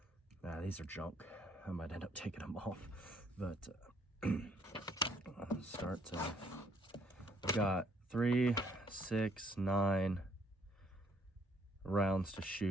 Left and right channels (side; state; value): both; normal; correlation 0.66